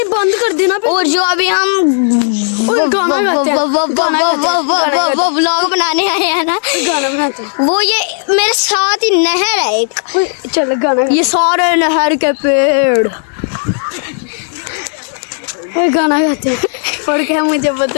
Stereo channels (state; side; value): silent; right; digital silence